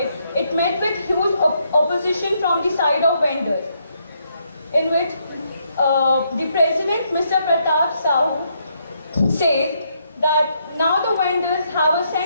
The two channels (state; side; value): inverted; both; correlation -0.75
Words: it met with huge opposition from the side of vendors, in which the president, Mr. Pratap Sahu, says that now the vendors have a